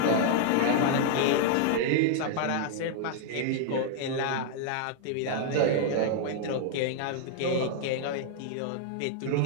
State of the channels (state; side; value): different; both; correlation 0.00